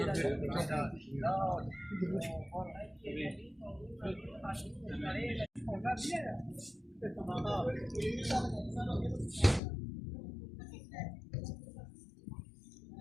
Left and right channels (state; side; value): drops out; right; at 9.6 s